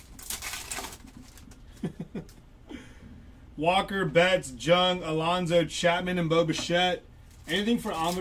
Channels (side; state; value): both; identical; correlation 1.00